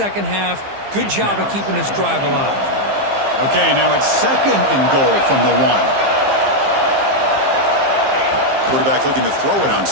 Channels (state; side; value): late; left; 15 ms